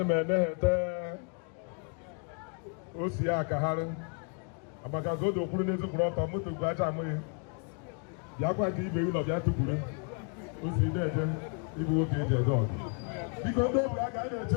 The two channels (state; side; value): quieter; right; 39.2 dB